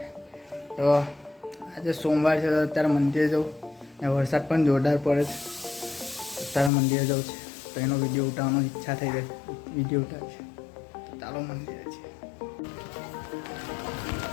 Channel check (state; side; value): drops out; right; at 6.7 s